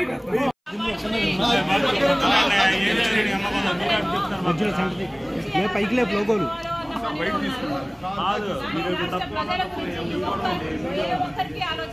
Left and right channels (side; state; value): both; identical; correlation 1.00